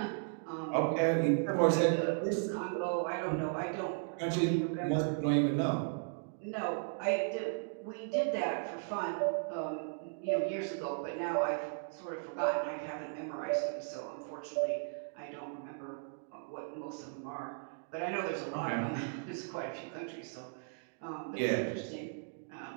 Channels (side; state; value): left; silent; digital silence